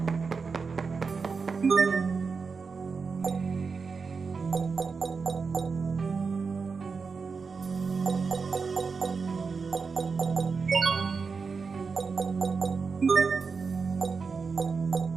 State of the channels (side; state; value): left; quieter; 5.0 dB